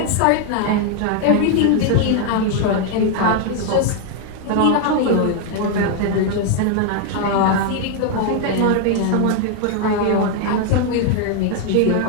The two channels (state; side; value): different; both; correlation 0.00